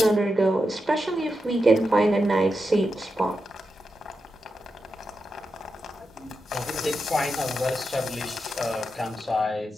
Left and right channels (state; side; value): normal; both; correlation 0.88